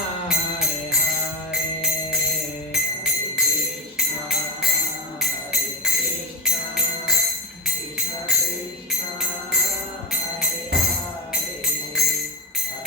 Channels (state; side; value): normal; both; correlation 0.04